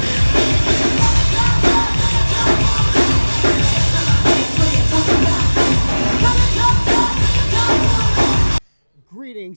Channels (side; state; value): both; inverted; correlation -1.00